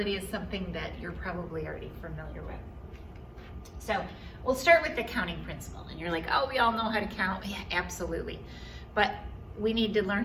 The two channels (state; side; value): identical; both; correlation 1.00